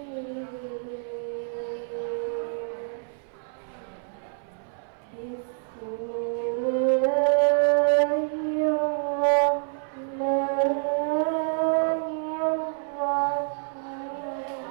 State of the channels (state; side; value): silent; left; 60 dB below the other